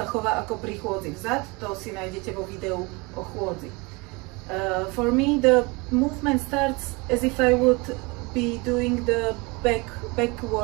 chová ako pri chôdzi vzad, to si nájdete vo videu o chôdzi. For me, the movement starts as if I would be doing the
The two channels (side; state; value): left; quieter; 26.9 dB